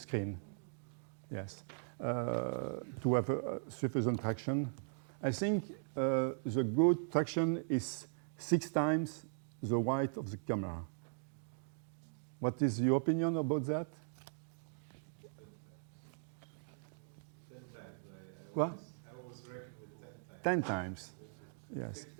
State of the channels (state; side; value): silent; left; digital silence